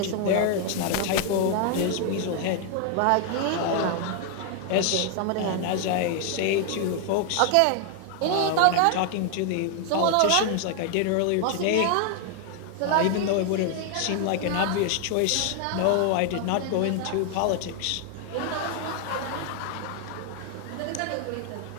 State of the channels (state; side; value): different; both; correlation 0.00